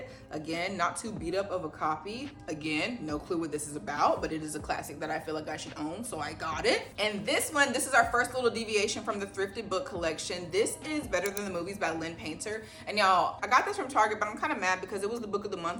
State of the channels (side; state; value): both; identical; correlation 1.00